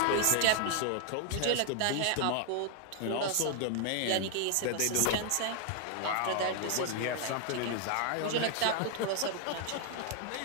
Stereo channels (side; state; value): both; different; correlation 0.00